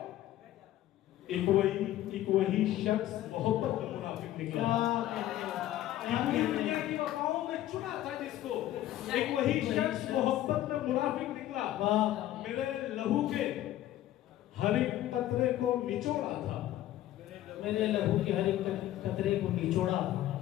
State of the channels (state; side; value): quieter; right; 13.7 dB